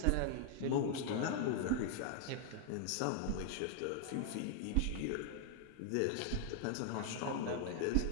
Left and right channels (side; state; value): both; different; correlation 0.00